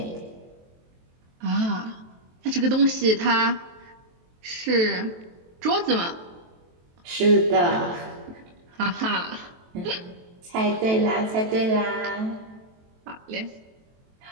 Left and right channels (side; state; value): left; late; 23 ms